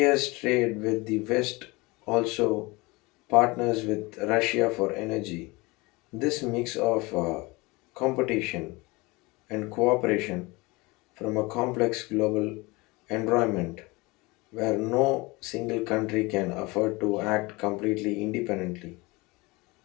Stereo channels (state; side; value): quieter; right; 24.0 dB